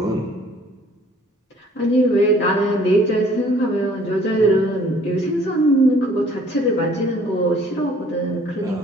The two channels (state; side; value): normal; both; correlation 0.57